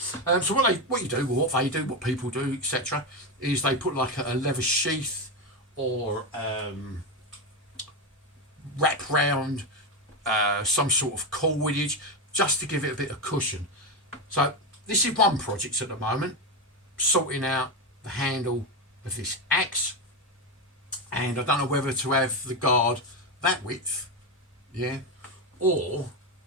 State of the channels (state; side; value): normal; both; correlation 0.11